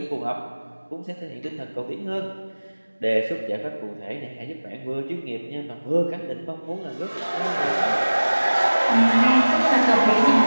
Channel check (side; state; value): both; inverted; correlation -1.00